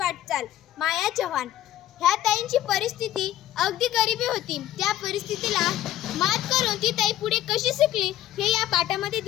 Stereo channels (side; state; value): right; quieter; 13.1 dB